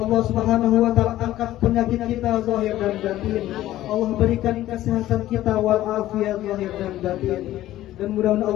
Allah Subhanahu wa taala angkat penyakit kita zahir dan batin. Allah berikan kesehatan kita wal afiat zahir dan batin. Dan mudah-mudahan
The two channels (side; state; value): right; quieter; 14.4 dB